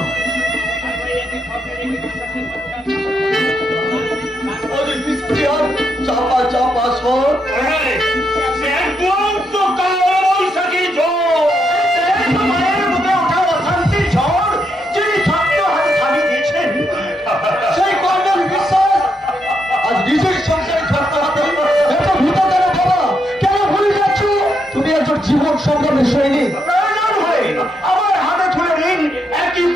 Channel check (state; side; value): normal; both; correlation 0.80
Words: और इसके और चापा चापा स्वर तो कौन सकी जो तुम्हारे मुझे उठा शांति छोड़ जिन्हें छात्र हर खाली देखें সেই কর্ণের বিশ্বাস আজ নিজের সংসারে ছাড়তে হাতে এত ভূত কেন বাবা? কেন ভুলে যাচ্ছ? তুমি একজন জীবন সংগ্রামের সৈনিক। প্রয়োজন হয় আমার হাতে তুলে নিন একই